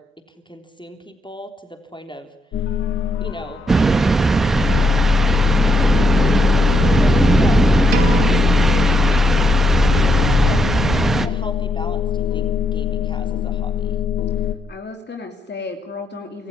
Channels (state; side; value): normal; both; correlation 0.79